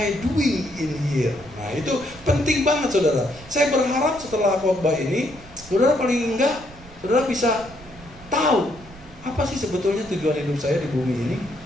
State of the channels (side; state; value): right; noise; rumble, 20 dB below the sound